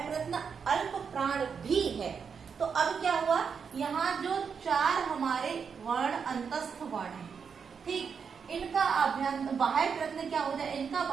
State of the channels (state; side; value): quieter; left; 6.3 dB